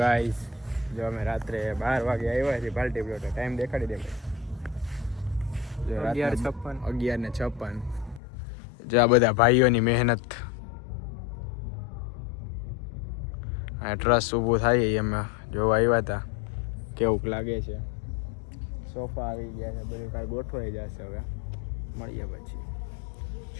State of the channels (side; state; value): right; drops out; at 8.2 s